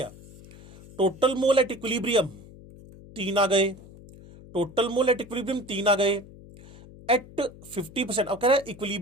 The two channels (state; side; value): noise; left; hum, 20 dB below the sound